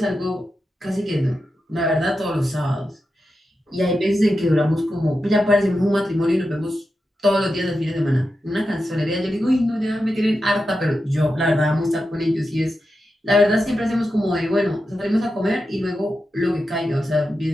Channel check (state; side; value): normal; both; correlation 0.90